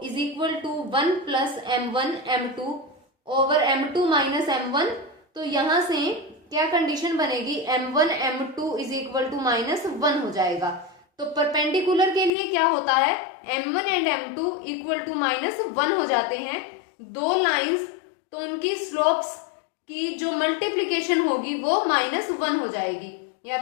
is equal to 1 plus m1 m2 over m2 minus m1। तो यहां से क्या कंडीशन बनेगी, m1 m2 is equal to minus 1 हो जाएगा। तो परपेंडिकुलर के लिए क्या होता है, m1 and m2 equal to minus 1 हो जाते हैं। दो लाइंस तो उनकी स्लोप्स की जो मल्टीप्लीकेशन होगी वो माइनस 1 हो जाएगी, या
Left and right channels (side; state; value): right; drops out; at 12.3 s